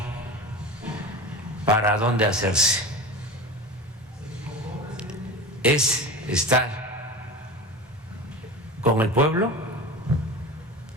para dónde hacerse. Es estar con el pueblo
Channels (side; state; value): both; normal; correlation 0.31